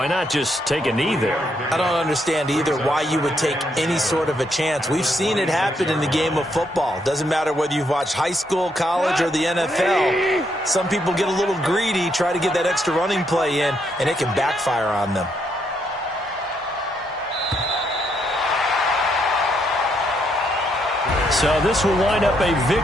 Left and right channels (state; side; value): normal; both; correlation 0.75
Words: not just take a knee there? I don't understand either why you would take any sort of a chance. We've seen it happen in the game of football. Doesn't matter whether you've watched high school, college, or the NFL. Some people get a little greedy, try to get that extra running play in, and it can backfire on them. So this will wind up a